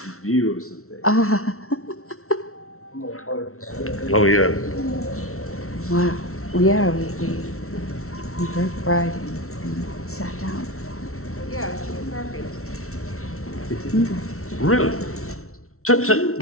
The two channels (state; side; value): late; right; 0.63 ms